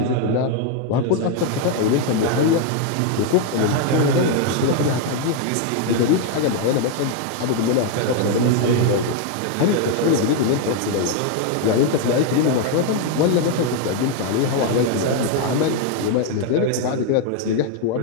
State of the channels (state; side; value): different; both; correlation 0.01